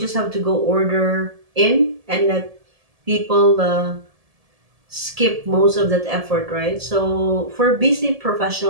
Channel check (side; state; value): left; late; 1.7 ms